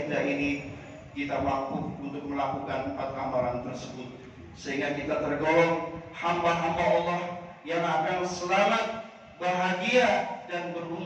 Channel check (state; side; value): identical; both; correlation 1.00